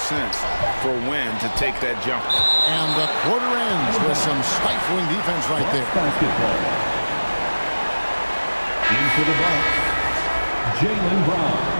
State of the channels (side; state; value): both; inverted; correlation -1.00